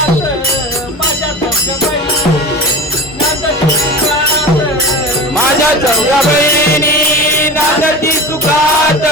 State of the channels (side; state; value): both; normal; correlation 0.32